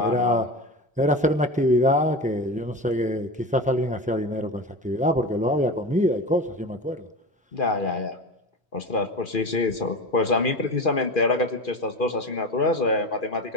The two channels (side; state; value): both; normal; correlation 0.27